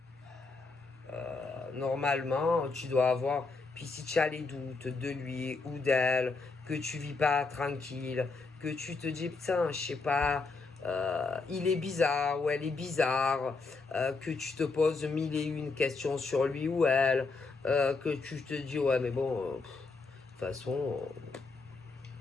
tu dois avoir... Puis si tu as les doutes de lui ou d'elle, que tu vis pas tranquille, que tu te dis, putain, je sais pas, il est bizarre ou elle est bizarre, que tu te poses mille et une questions sur lui ou elle, que tu te dis, ouais, mais bon, de toute façon,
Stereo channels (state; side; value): quieter; right; 4.0 dB